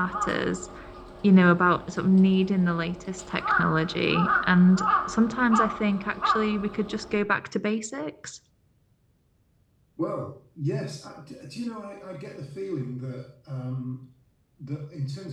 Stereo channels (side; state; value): both; identical; correlation 1.00